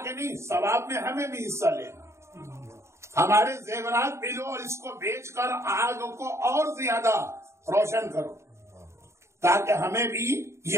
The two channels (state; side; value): late; left; 0.14 ms